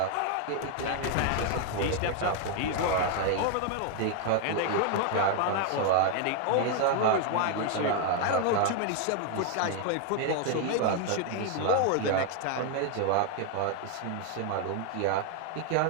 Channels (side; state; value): both; different; correlation 0.00